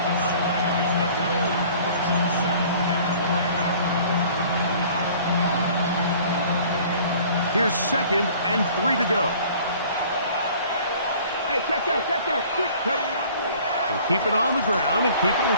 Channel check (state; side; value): inverted; both; correlation -0.51